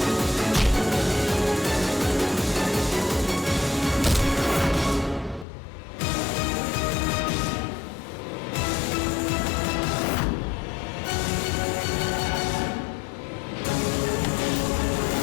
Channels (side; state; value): right; drops out; at 5.5 s